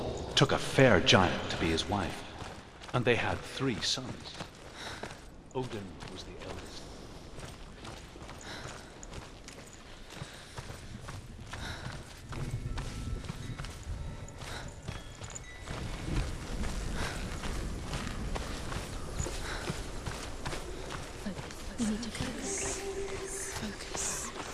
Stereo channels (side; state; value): both; identical; correlation 1.00